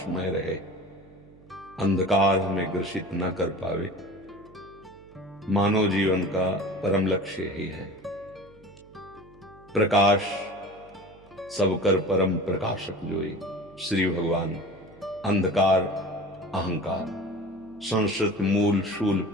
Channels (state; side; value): noise; right; hum, 25 dB below the sound